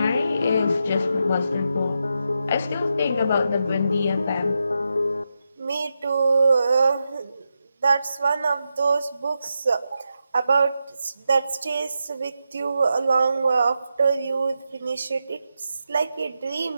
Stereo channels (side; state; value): both; inverted; correlation -0.87